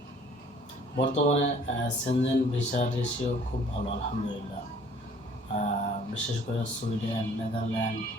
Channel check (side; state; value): both; normal; correlation 0.55